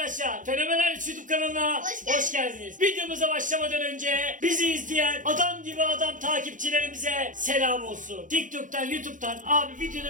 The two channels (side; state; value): left; late; 0.38 ms